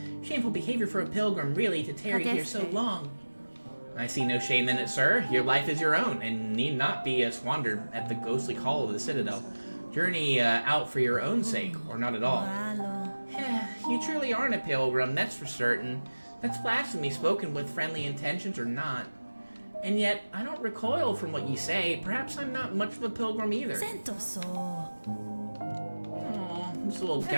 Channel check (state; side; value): inverted; both; correlation -1.00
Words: Shameful behavior for a pilgrim, really, to tarry here so long. I see no shame in it, sir. Your life is your own, and need not be squandered at the ghostly call of the Citadel. Journey out for your own sake, or not at all. You truly aren't a pilgrim, that's for certain. That's blasphemy, spoken with friendly intentions or not. And yet, I don't recoil from what you say. Perhaps I'm not much of a pilgrim either. Oh, this little